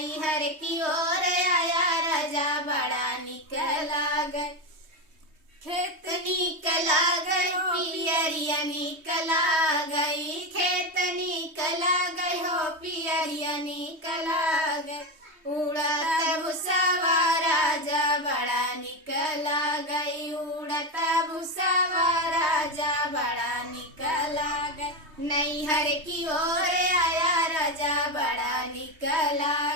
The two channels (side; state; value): left; late; 3.2 ms